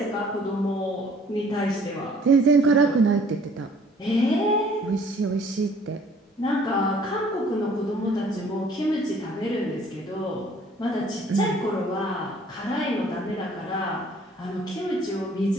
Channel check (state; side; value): normal; both; correlation 0.56